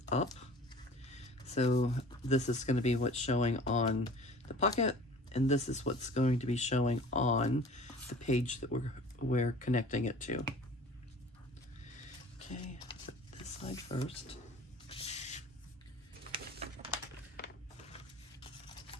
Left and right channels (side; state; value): both; normal; correlation 0.45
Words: up. So this is going to be what's showing on the pocket, and this is what's going to be showing on the page that we're connecting it to. Okay, put this side first.